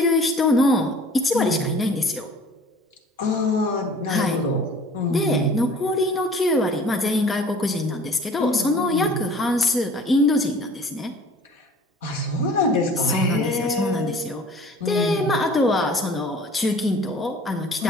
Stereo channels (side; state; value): both; normal; correlation 0.48